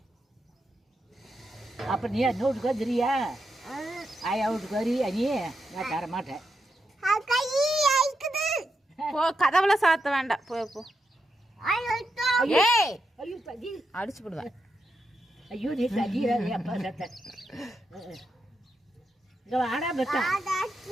அப்போ நீ என்ன வீட்டுக்கு வந்துறியா? ஆயா வீட்டுக்கு வரியா நீ? நான் தர மாட்டேன். போ, கதவுல சாத்த வேண்டாம். போ போ. ஏய், ஐயோ தடி, அடிச்சு விடுவேன். ஐயோ நீ தடிறாது அப்பா சத்த. இங்கே வாடா பெத்தா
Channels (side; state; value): both; normal; correlation 0.84